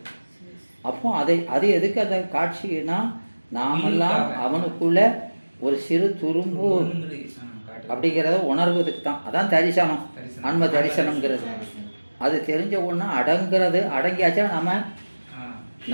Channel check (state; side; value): inverted; both; correlation -1.00